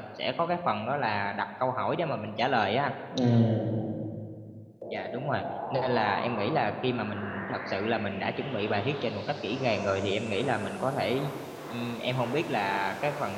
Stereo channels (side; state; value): both; identical; correlation 1.00